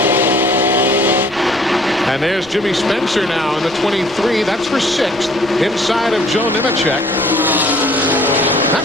And there's Jimmy Spencer now in the 23. That's for 6th, inside of Joe Nemechek.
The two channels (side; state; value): right; noise; rumble, 22 dB below the sound